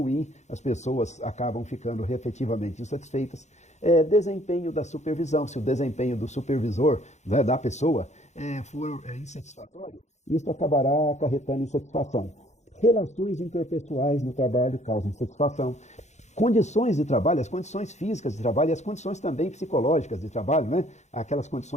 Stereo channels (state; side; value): late; right; 0.33 ms